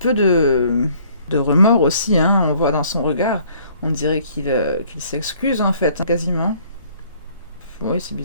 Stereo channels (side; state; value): both; inverted; correlation -0.59